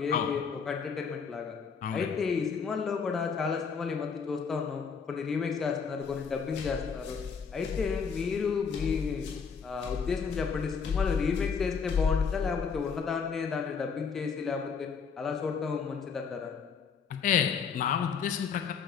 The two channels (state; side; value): quieter; right; 6.0 dB